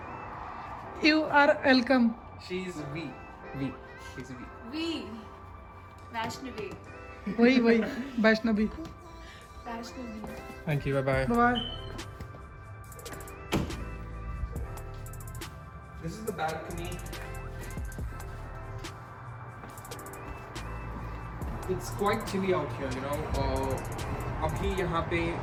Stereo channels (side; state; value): both; identical; correlation 1.00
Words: You are welcome. She's V. V. She's V. We. Vaishnavi. वही Vaishnavi. Vaishnavi. Thank you. Bye bye. Bye. This is the balcony. It's quite chilly out here, अभी यहाँ पे